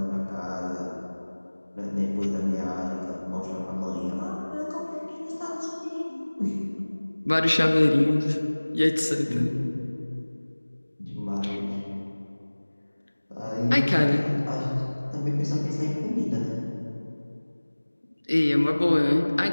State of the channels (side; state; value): both; inverted; correlation -1.00